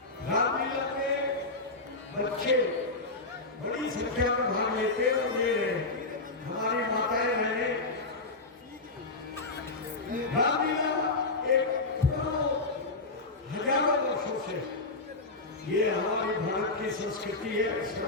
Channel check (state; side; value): quieter; right; 3.3 dB